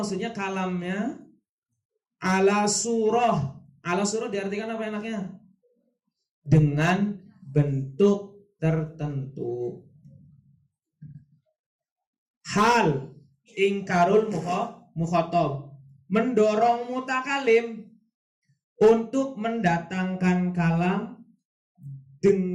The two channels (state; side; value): identical; both; correlation 1.00